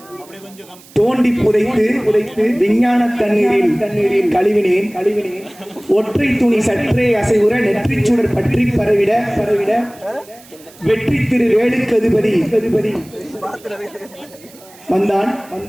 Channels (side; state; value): right; noise; hiss, 24 dB below the sound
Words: தோண்டி புதைத்து விஞ்ஞான தண்ணீரில் கழுவினேன். ஒற்றை துணி சற்றே அசைவுற நெற்றிச் சுடர் பற்றி பரவிட வெற்றி திரு வேலுக்கதிபதி வந்தான்.